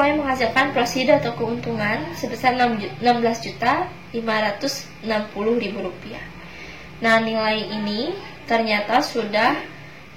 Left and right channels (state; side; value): identical; both; correlation 1.00